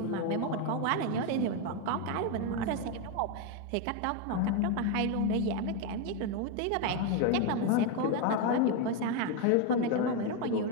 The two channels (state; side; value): different; both; correlation 0.02